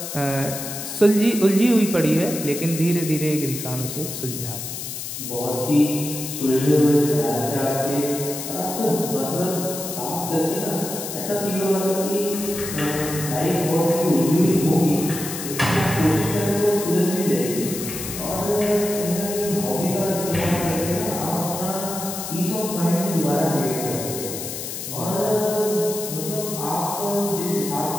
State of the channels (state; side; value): noise; left; hiss, 7 dB below the sound